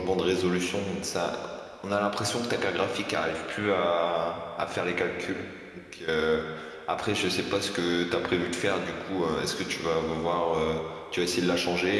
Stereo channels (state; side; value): identical; both; correlation 1.00